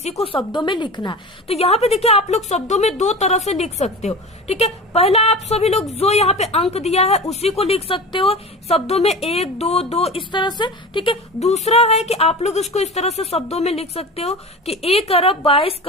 को शब्दों में लिखना है। तो यहाँ पे देखिए आप लोग शब्दों में 2 तरह से लिख सकते हो। ठीक है, पहला आप सभी लोग जो यहाँ पे अंक दिया है उसी को लिख सकते हो शब्दों में 1, 2, 2 इस तरह से। ठीक है, दूसरा है कि आप लोग इसको इस तरह से शब्दों में लिख सकते हो कि 1 अरब 22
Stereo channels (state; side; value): normal; both; correlation 0.32